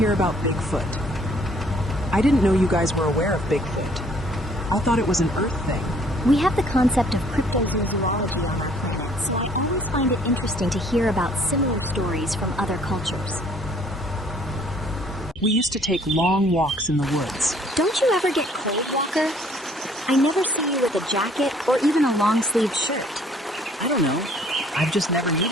about Bigfoot? I didn't know you guys were aware of Bigfoot. I thought it was an Earth thing. We have the concept of cryptozoology on our planet, so I always find it interesting to hear about similar stories from other cultures. We used to take long walks in the woods. Don't you ever get cold, Walker? I never see you with a jacket or even a long-sleeved shirt. I don't know. I've just never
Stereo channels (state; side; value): normal; both; correlation 0.60